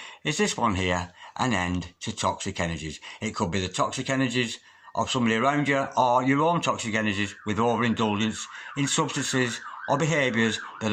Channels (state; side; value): identical; both; correlation 1.00